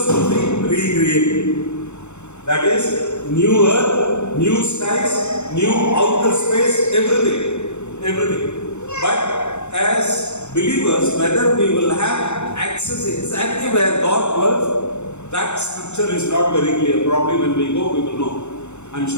will be recreated. That is, new earth, new skies, new outer space, everything. Everything. But as believers, whether we will have access exactly where God dwells, that scripture is not very clear. Probably when we go, we will know. I'm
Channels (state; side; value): late; right; 0.82 ms